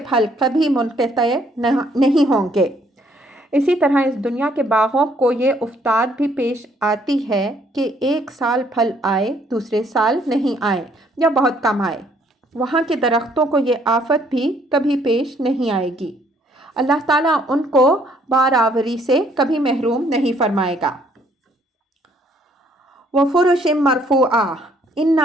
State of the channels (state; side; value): normal; both; correlation 0.65